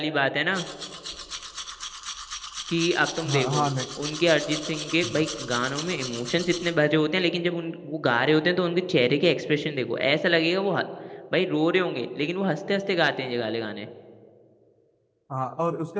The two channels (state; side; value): identical; both; correlation 1.00